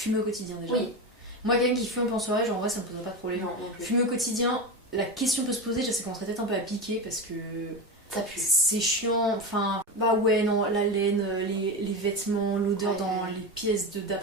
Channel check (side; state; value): both; normal; correlation 0.20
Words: au quotidien déjà. Oui. Moi, quelqu'un qui fume en soirée, genre en vrai, ça me poserait pas de problème. Non, non plus. Fumer au quotidien, la question peut se poser, je sais qu'on serait peut-être un peu à piquer parce que. Ça pue. C'est chiant, enfin, bah ouais, non, la laine, les vêtements, l'odeur dans les pièces